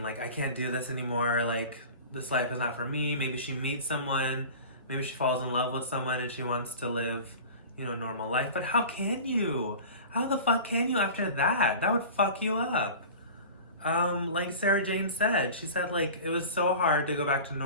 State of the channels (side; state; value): both; inverted; correlation -0.37